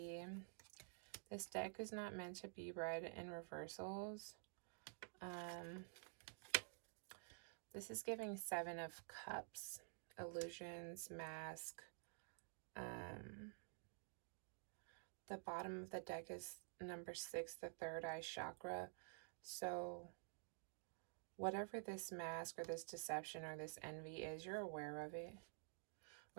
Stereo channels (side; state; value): left; silent; digital silence